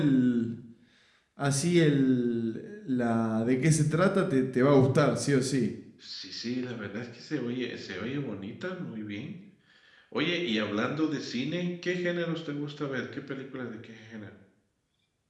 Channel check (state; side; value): identical; both; correlation 1.00